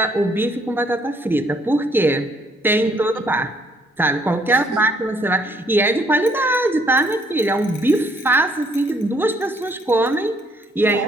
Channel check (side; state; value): both; normal; correlation 0.67